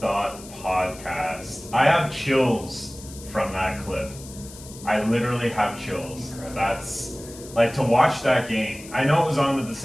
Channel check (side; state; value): left; noise; hiss, 17 dB below the sound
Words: podcast. I have chills from that clip. I literally have chills. That's like to watch that game. I know it was on at the